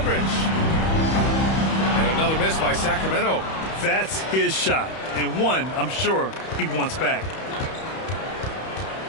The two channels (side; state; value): right; late; 31 ms